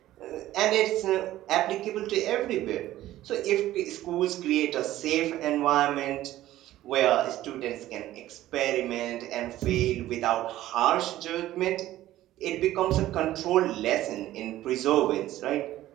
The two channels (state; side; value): quieter; left; 14.5 dB